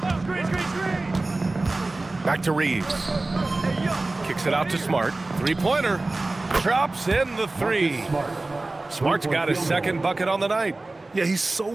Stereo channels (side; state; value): left; quieter; 3.1 dB